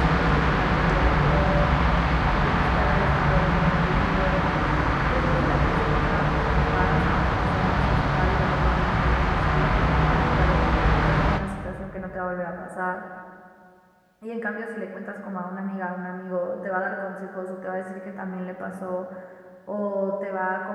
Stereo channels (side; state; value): both; identical; correlation 1.00